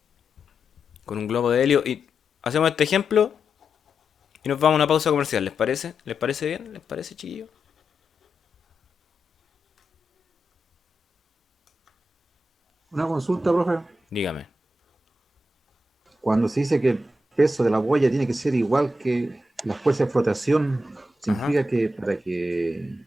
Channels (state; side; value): normal; both; correlation 0.86